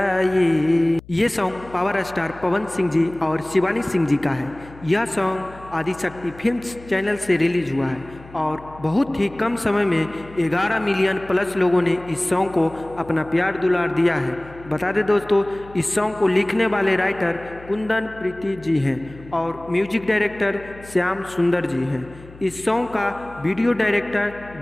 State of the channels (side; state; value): left; noise; hum, 20 dB below the sound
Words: ये सॉन्ग पावर स्टार पवन सिंह जी और शिवानी सिंह जी का है। यह सॉन्ग आदिशक्ति फिल्म्स चैनल से रिलीज हुआ है और बहुत ही कम समय में 11 मिलियन प्लस लोगों ने इस सॉन्ग को अपना प्यार दुलार दिया है। बता दें दोस्तों, इस सॉन्ग को लिखने वाले राइटर कुंदन प्रीति जी हैं और म्यूजिक डायरेक्टर श्याम सुंदर जी हैं। इस सॉन्ग का वीडियो डायरेक्टर